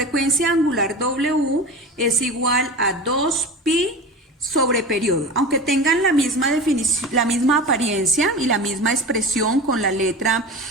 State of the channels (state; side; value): normal; both; correlation 0.30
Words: angular W es igual a 2pi sobre periodo, aunque tengan la misma definición, la misma apariencia y la misma expresión con la letra